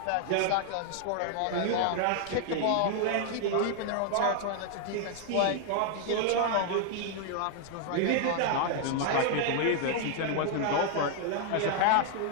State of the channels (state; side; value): different; both; correlation 0.00